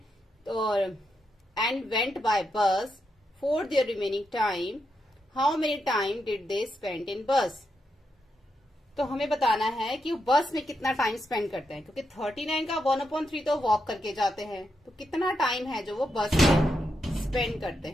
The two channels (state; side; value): normal; both; correlation 0.83